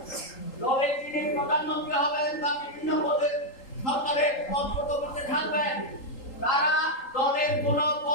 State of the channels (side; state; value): right; late; 3.8 ms